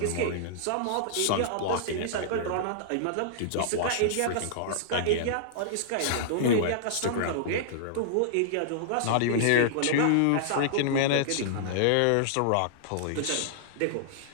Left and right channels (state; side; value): different; both; correlation -0.02